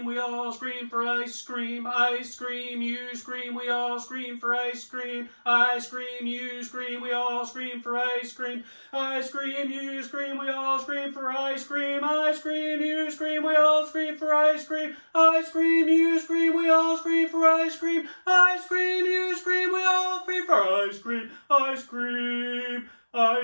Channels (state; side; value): inverted; both; correlation -1.00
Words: we all scream for ice cream. I scream, you scream, we all scream for ice cream. I scream, you scream, we all scream for ice cream. I scream, you scream, we all scream for ice cream. I scream, you scream, we all scream for ice cream. I scream, you scream, we all scream for ice cream. I scream, you scream, we all scream for ice cream. I scream. I